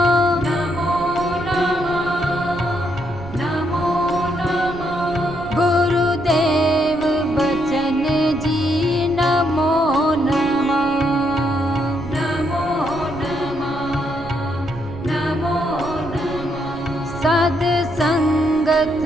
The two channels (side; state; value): right; noise; rumble, 15 dB below the sound